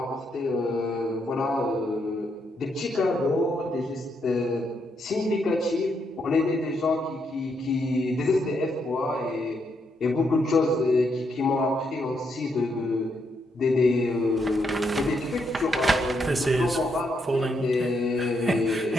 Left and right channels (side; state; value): both; normal; correlation 0.78